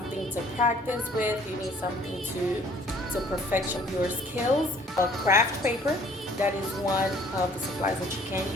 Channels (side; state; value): both; normal; correlation 0.56